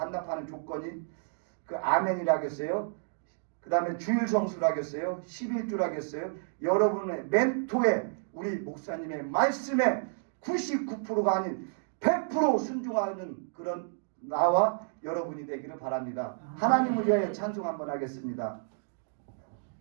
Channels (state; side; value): silent; left; digital silence